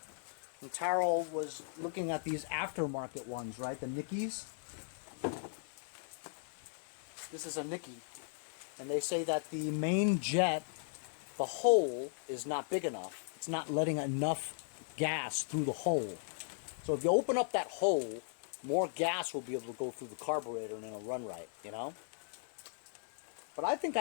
And Taro was looking at these aftermarket ones, right? The Nickies. This is a Nicki. And they say that the main jet, the hole is not big enough. It's not letting enough gas through the hole. So if you open up that hole, more gas will be able to go through the carburetor and it'll run right, you know? But I think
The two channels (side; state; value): right; silent; 53 dB below the other